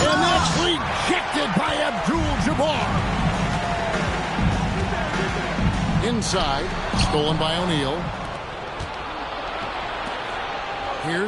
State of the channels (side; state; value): both; identical; correlation 1.00